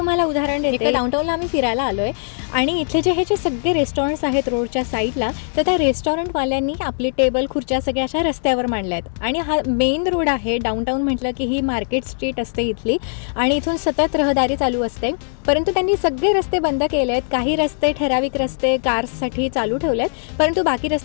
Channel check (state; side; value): silent; right; digital silence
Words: उदाहरण देते. डाऊनटाऊनला आम्ही फिरायला आलो आहे आणि इथले हे जे सगळे रेस्टॉरंट्स आहेत रोडच्या साईडला, तर त्या रेस्टॉरंटवाल्यांनी आपली टेबल खुर्च्या सगळ्या अशा रस्त्यावर मांडल्या आहेत आणि हा मेन रोड आहे. डाऊनटाऊन म्हटलं की ही मार्केट स्ट्रीट असते इथली आणि इथून सतत रहदारी चालू असते. परंतु त्यांनी सगळे रस्ते बंद केले आहेत. काही रस्ते, ठराविक रस्ते कार्ससाठी चालू ठेवले आहेत, परंतु बाकी